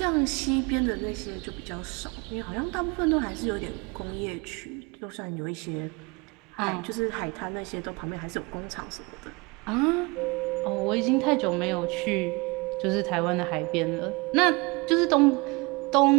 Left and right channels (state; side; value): quieter; left; 26.8 dB